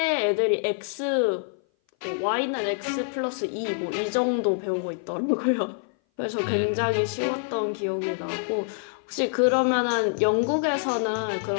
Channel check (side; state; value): right; silent; 58 dB below the other